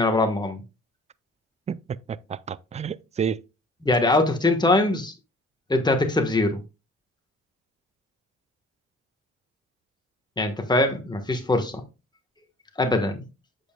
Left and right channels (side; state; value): both; normal; correlation 0.50